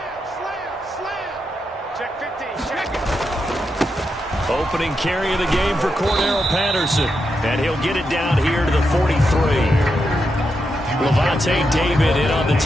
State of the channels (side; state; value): both; normal; correlation 0.85